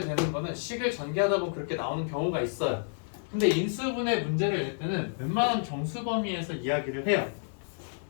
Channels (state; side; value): silent; right; 58 dB below the other